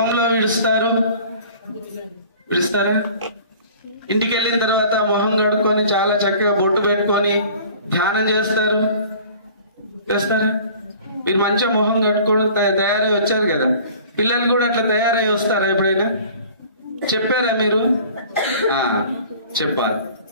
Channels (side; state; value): both; inverted; correlation -0.47